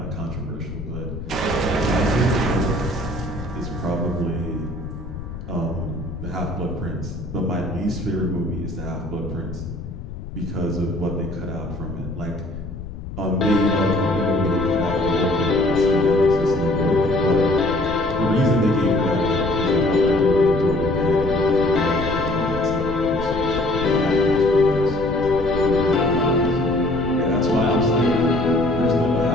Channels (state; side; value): noise; left; rumble, 10 dB below the sound